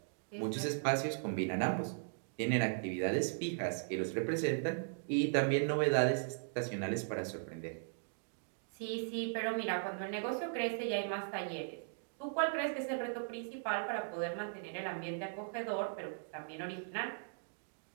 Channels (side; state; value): left; silent; digital silence